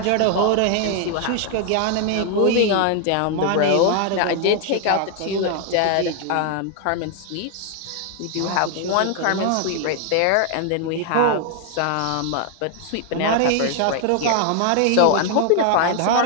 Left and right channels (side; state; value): both; different; correlation 0.00